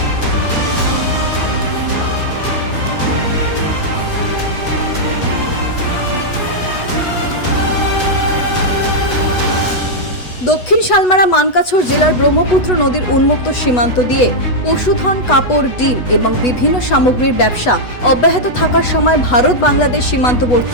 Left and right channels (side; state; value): right; late; 8.1 ms